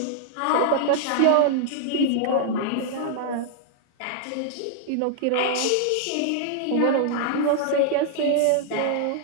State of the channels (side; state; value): both; different; correlation -0.01